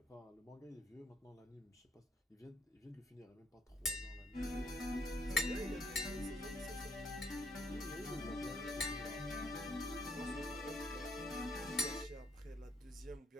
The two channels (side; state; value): both; normal; correlation 0.68